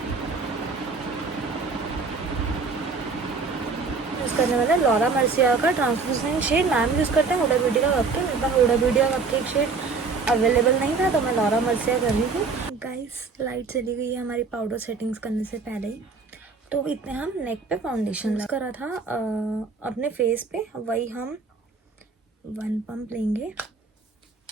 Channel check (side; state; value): left; quieter; 4.5 dB